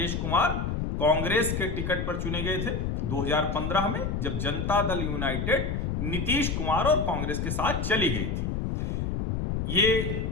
कांग्रेस के टिकट पर चुने गए थे 2015 में, जब जनता दल यूनाइटेड नीतीश कुमार और कांग्रेस के साथ चली गई थी। ये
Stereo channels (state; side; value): noise; left; rumble, 1 dB below the sound